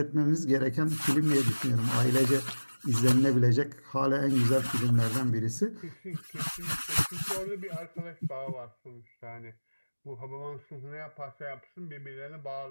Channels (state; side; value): inverted; both; correlation -1.00